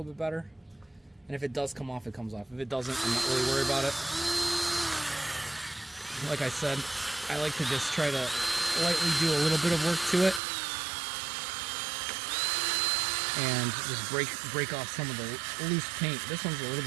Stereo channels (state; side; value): drops out; left; at 10.4 s